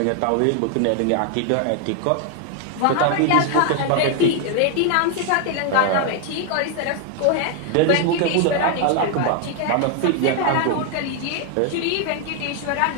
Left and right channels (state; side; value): different; both; correlation 0.01